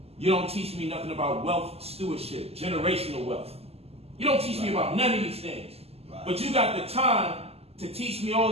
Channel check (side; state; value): left; late; 0.29 ms